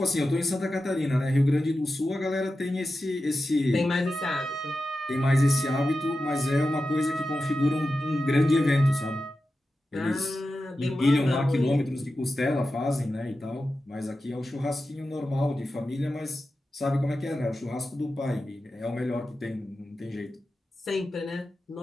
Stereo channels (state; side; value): normal; both; correlation 0.92